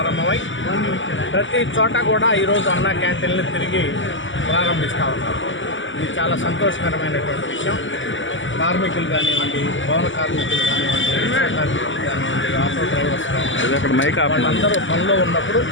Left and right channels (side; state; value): right; late; 0.55 ms